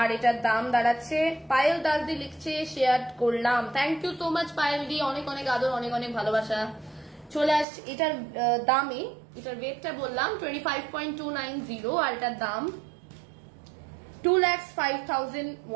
এটার দাম দাঁড়াচ্ছে, পায়েল দাসদি লিখছে শেয়ার করলাম, thank you so much Payel di, অনেক অনেক আদর, অনেক অনেক ভালোবাসা। চলে আসছে এটার দামে, এটার ওয়েটটা বললাম 25.290 আর এটার দাম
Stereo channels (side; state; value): left; drops out; at 7.7 s